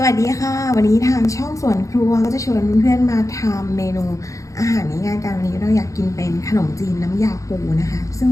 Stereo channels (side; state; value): right; late; 0.15 ms